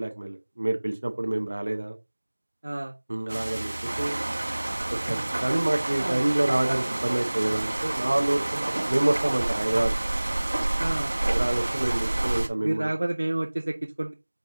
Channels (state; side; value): inverted; both; correlation -1.00